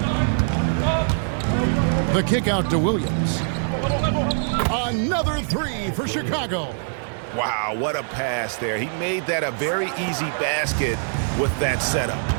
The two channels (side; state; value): left; silent; digital silence